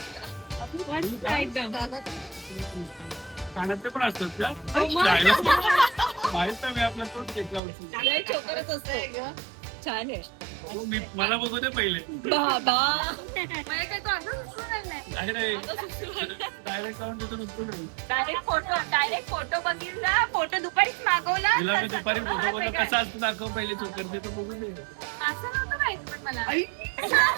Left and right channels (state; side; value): drops out; left; at 7.6 s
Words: कानातले पण असतात का? माहित नाही, मी आपला तोच घेतला होता. छान आहे. मला बघू दे पहिले. डायरेक्ट जाऊन तिथून उचलून येऊ. डायरेक्ट फोटो बघितला, फोटो दुपारीच मागवला. तिला मी दुपारी फोटो बघतो कसा असतो दाखव पहिले चोकर ते तर बघू दे. असं नव्हतं माहिती पण मला.